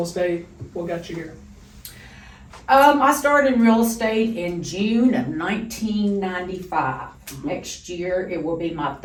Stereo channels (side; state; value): both; identical; correlation 1.00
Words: estate? What got you here? I started in real estate in June of 1995. Next year, it will be my